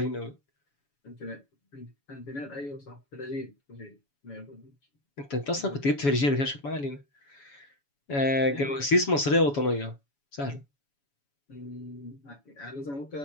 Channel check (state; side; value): late; right; 7.1 ms